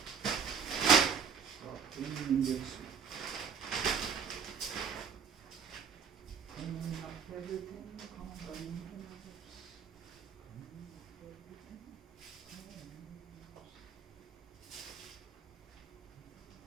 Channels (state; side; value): quieter; left; 6.6 dB